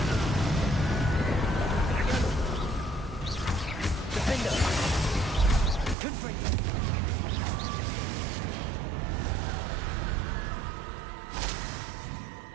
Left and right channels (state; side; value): drops out; left; at 6.0 s